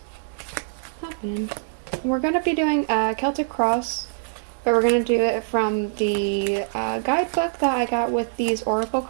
happening. We're going to be doing a Celtic Cross, but we're going to do it from the guidebook that I got with these oracle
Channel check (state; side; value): silent; left; 63 dB below the other